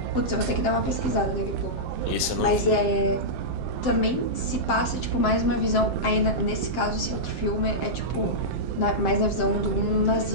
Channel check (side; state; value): right; late; 7.7 ms